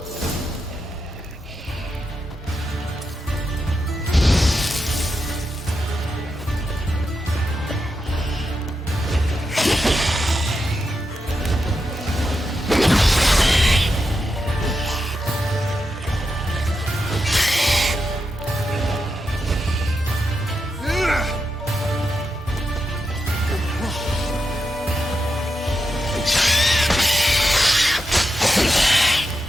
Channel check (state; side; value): normal; both; correlation 0.86